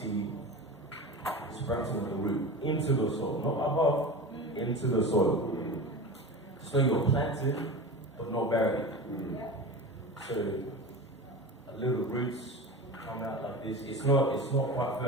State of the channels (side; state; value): both; normal; correlation 0.30